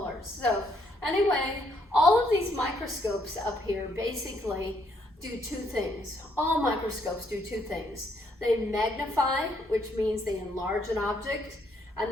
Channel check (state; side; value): normal; both; correlation 0.71